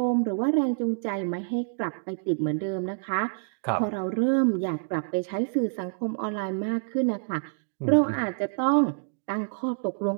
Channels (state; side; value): silent; left; digital silence